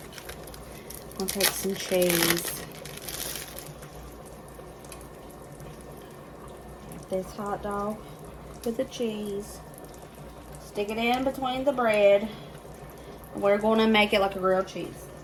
I'll take some cheese. This hot dog with the cheese. Stick it in between the bread. We're going to make it like a grilled cheese.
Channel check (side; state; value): both; identical; correlation 1.00